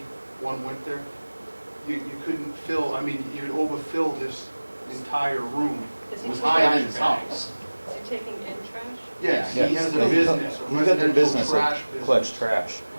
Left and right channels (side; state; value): both; inverted; correlation -1.00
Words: one winter? You couldn't fill, you'd overfill this entire room. Is It was higher than his house. Is he taking in trash? Yes, he Yeah, has a he's- business, a He's got the residential business of trash business. Pledge trash.